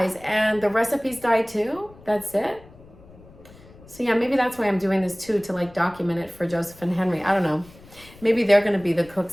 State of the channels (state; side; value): noise; left; rumble, 23 dB below the sound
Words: and the recipes die too? That's it. So yeah, maybe that's why I'm doing this too, to like document it for Joseph and Henry. I don't know. Maybe they're going to be the